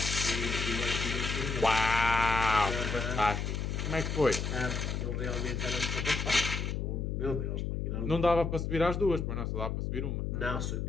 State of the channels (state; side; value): noise; left; hum, 2 dB below the sound